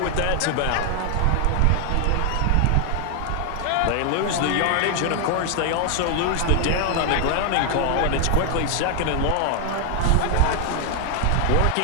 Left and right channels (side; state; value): both; different; correlation 0.00